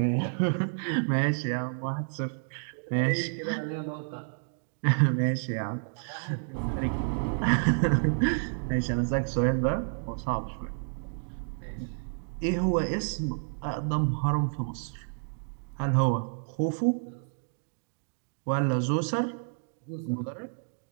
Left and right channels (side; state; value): left; silent; digital silence